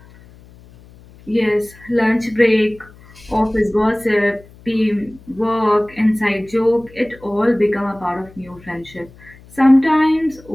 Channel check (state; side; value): noise; left; hum, 24 dB below the sound